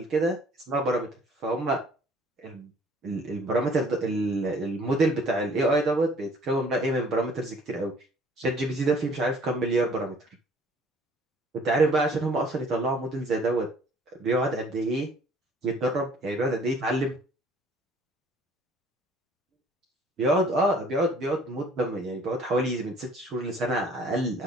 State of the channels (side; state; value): both; normal; correlation 0.56